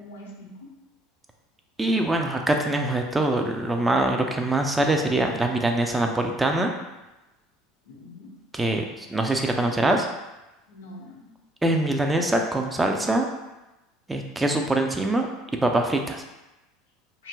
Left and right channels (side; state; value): both; normal; correlation 0.70